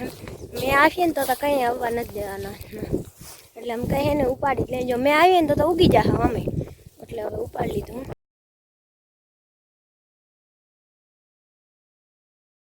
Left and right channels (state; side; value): identical; both; correlation 1.00